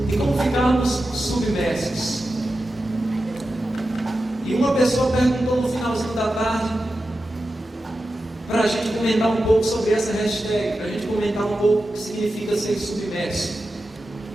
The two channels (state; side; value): normal; both; correlation 0.91